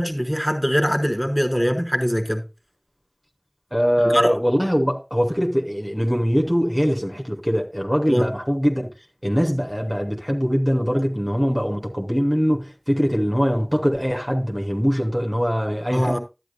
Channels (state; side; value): identical; both; correlation 1.00